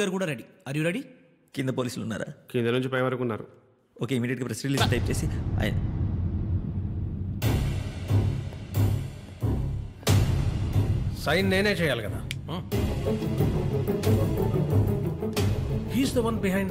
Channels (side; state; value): both; identical; correlation 1.00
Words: గారు కూడా రెడీ. Are you ready? కింద పోలీసులు ఉన్నారా? కింద నుంచి పై వరకు ఉన్నారు. ఓకే, ఇమీడియట్గా ప్రెస్ రిలీజ్ టైప్ చేసి సైన్ నేనే చేయాలి కదా. He's the one